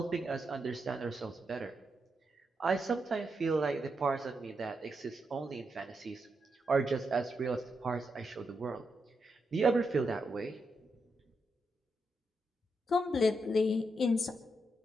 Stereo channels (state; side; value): normal; both; correlation 0.84